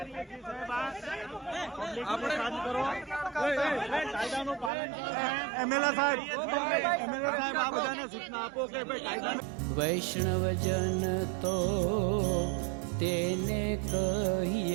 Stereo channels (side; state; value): left; drops out; at 4.7 s